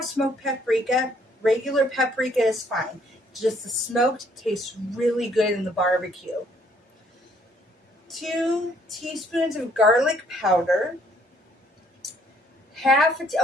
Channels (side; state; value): both; normal; correlation 0.65